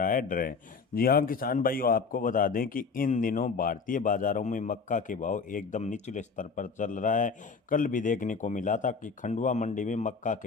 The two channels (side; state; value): right; quieter; 5.1 dB